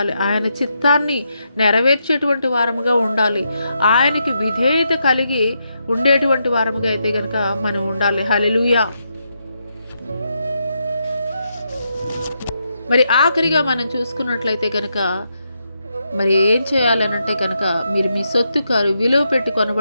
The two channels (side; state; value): both; inverted; correlation -0.81